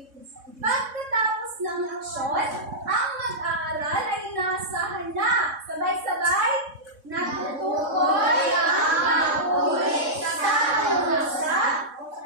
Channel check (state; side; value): late; left; 3.6 ms